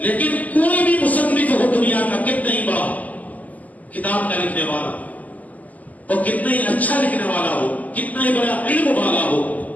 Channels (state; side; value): late; right; 0.077 ms